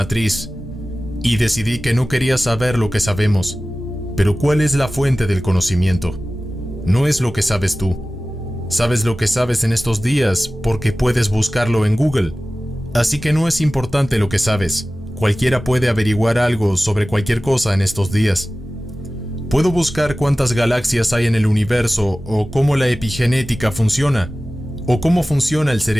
y decidí que no quería saber lo que sabemos. Pero ¿cuál es la fuente del conocimiento? No es lo que sabes tú. Sabes lo que sabes en estos días porque puedes buscarlo en Google. Así que no es importante lo que sabes. Cualquiera puede averiguar algo sobre cualquier cosa en estos días. Puedo buscar cuántas galaxias hay en el universo, o cómo la epigenética funciona, o cómo funciona el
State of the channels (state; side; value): normal; both; correlation 0.96